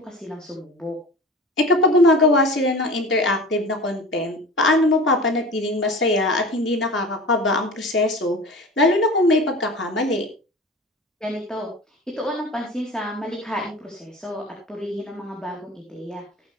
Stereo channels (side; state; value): both; normal; correlation 0.36